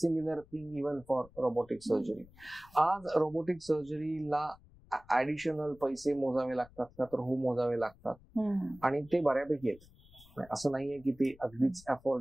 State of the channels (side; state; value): left; noise; rumble, 25 dB below the sound